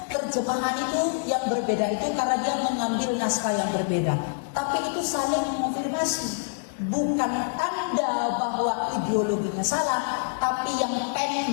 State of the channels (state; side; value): silent; right; digital silence